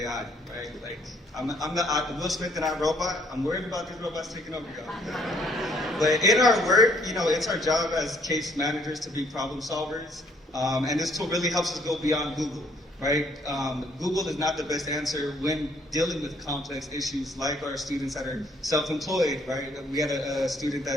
right? Like, I'm the Will Smith and I robot. I'm worried about these robots taking over, y'all. But in our work, it's our job as case managers to be problem solvers. And this tool really helps us go beyond Google, right? Google is not the best answer when dealing with complex issues like our students that are self-employed, right? We had a student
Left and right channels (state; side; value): normal; both; correlation 0.64